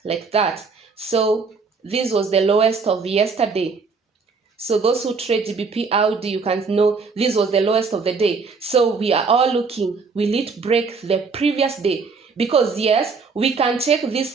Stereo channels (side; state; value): left; quieter; 4.7 dB